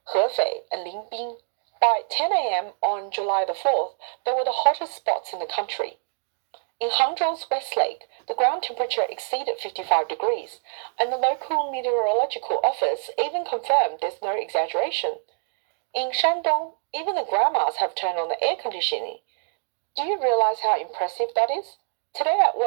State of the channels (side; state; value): left; silent; digital silence